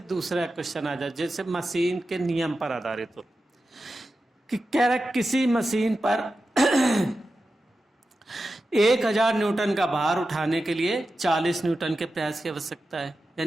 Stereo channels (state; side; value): normal; both; correlation 0.92